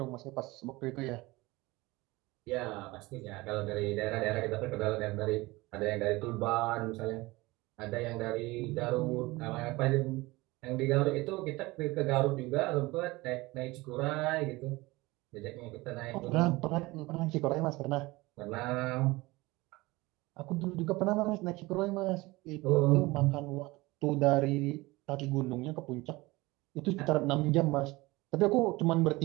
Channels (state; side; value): quieter; left; 21.4 dB